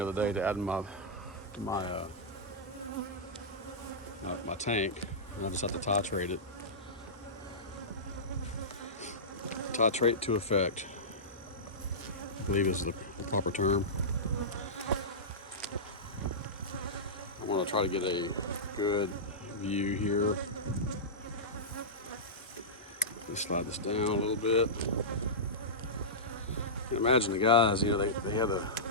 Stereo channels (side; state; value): both; normal; correlation -0.16